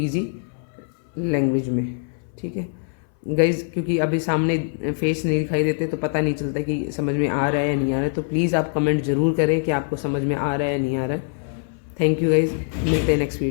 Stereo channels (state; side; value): silent; right; 59 dB below the other